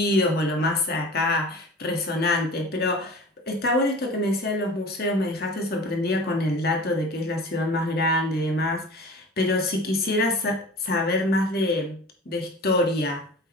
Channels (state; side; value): normal; both; correlation 0.39